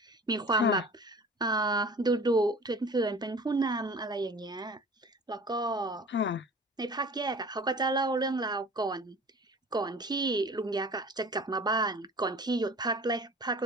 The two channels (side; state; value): both; normal; correlation 0.43